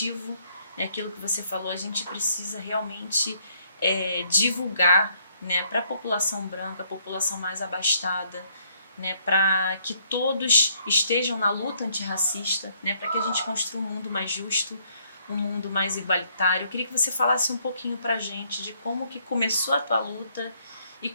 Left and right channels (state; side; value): inverted; both; correlation -0.67